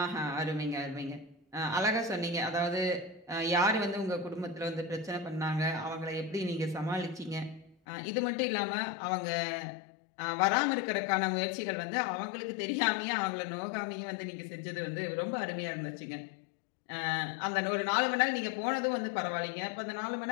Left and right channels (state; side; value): drops out; right; at 7.8 s